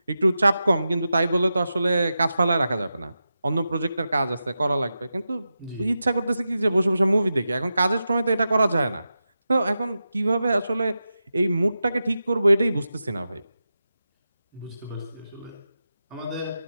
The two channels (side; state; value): both; inverted; correlation -0.91